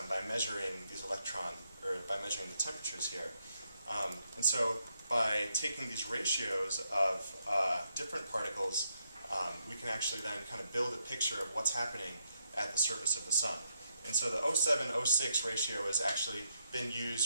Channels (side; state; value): both; inverted; correlation -0.79